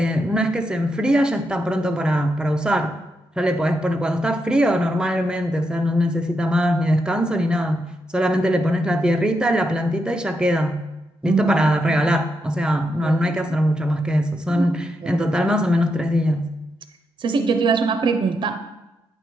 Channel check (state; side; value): normal; both; correlation 0.83